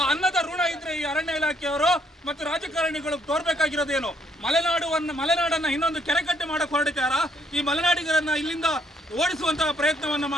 ಅನ್ನದ ಋಣ ಇದ್ರೆ ಈ ಅರಣ್ಯ ಇಲಾಖೆಯವರು ಮತ್ತು ರಾಜಕಾರಣಿಗಳು ತೋರ್ಬೇಕಾಗಿರೋದೇನು? ಮಲೆನಾಡನ್ನ ಇನ್ನೊಂದು ಕೆರೆಕಟ್ಟೆ ಮಾಡಕ್ ಹೊರಡಿತಾರ. ಈ ಮಲೆನಾಡಿಗರನ್ನ ಇಲ್ಲಿಂದ ಓಡಿಸುವಂತಹ ಪ್ರಯತ್ನವನ್ನ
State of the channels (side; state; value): both; normal; correlation 0.69